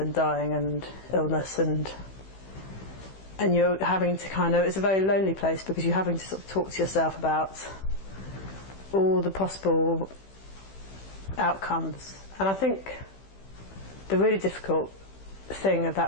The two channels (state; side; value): late; right; 15 ms